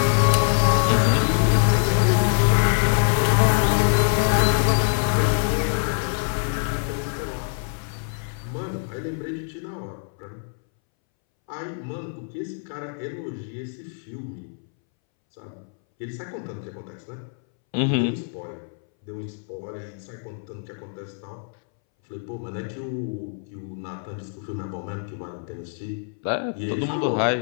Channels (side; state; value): right; silent; 62 dB below the other